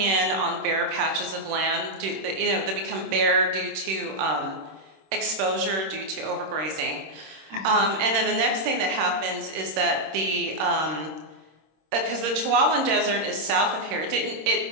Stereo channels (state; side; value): late; left; 26 ms